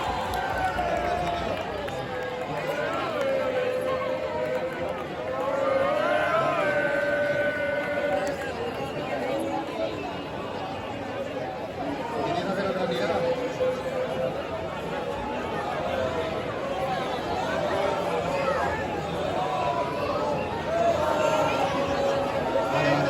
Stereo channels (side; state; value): both; identical; correlation 1.00